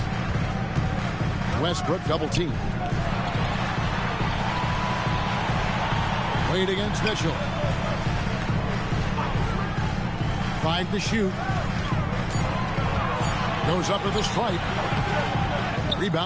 Westbrook double team. Wade against Mitchell. 5 to shoot. Goes up to the stripe.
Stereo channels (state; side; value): identical; both; correlation 1.00